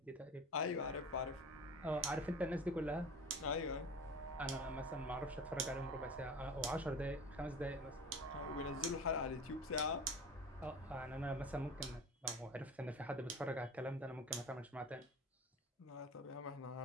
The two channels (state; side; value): normal; both; correlation 0.36